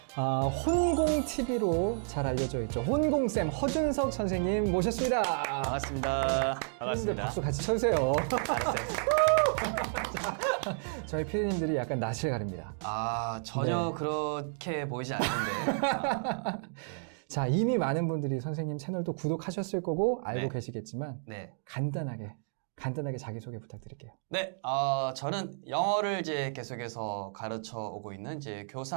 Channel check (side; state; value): left; silent; digital silence